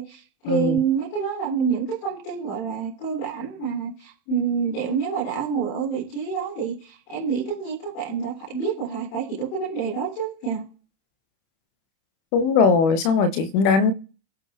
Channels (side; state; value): right; late; 31 ms